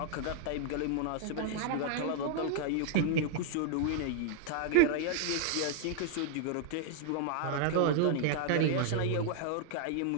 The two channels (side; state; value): both; different; correlation 0.00